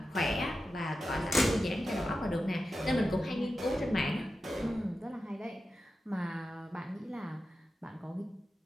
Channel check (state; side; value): normal; both; correlation 0.92